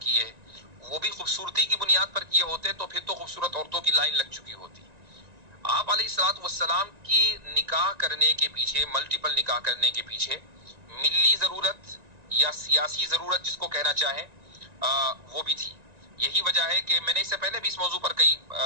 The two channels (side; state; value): left; late; 1.9 ms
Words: وہ بھی خوبصورتی کی بنیاد پر کیے ہوتے تو پھر تو خوبصورت عورتوں کی لائن لگ چکی ہوتی. آپ علیہ الصلوۃ والسلام کی نکاح کرنے کے پیچھے، ملٹیپل نکاح کرنے کے پیچھے ملی ضرورت یا سیاسی ضرورت جس کو کہنا چاہیں وہ بھی تھی. یہی وجہ ہے کہ میں نے اس سے پہلے بھی اس موضوع پر